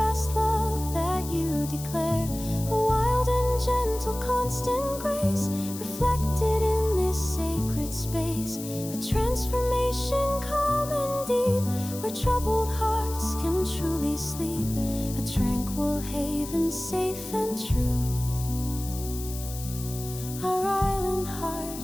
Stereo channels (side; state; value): left; noise; hiss, 12 dB below the sound